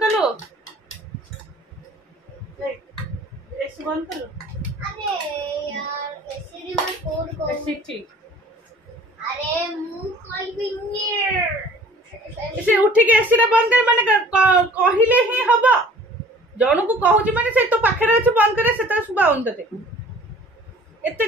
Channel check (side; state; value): both; normal; correlation 0.50